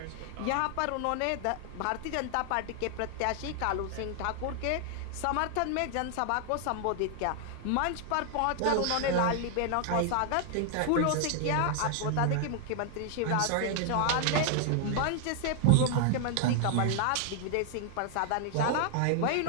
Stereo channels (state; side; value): different; both; correlation 0.00